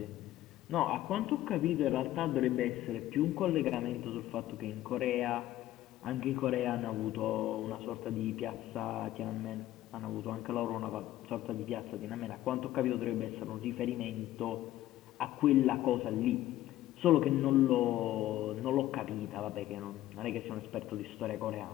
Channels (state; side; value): quieter; right; 14.3 dB